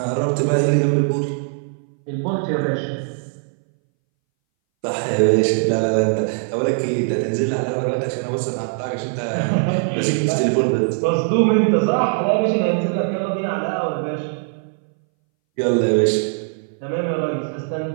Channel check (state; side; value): silent; left; 62 dB below the other